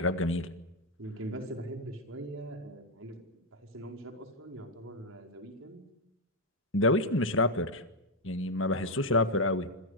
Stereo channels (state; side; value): normal; both; correlation 0.02